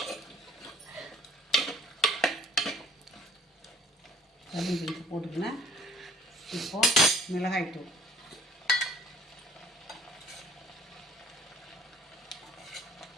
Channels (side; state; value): both; normal; correlation 0.57